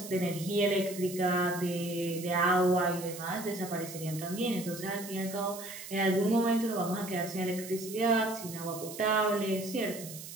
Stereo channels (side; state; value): right; noise; hiss, 12 dB below the sound